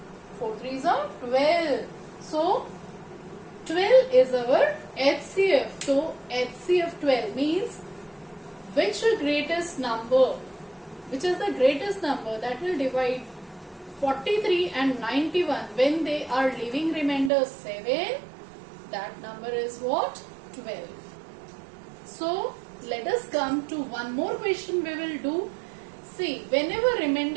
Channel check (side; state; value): left; drops out; at 17.3 s